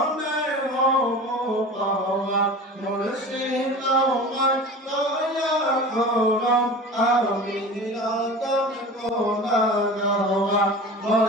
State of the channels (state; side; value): normal; both; correlation 0.35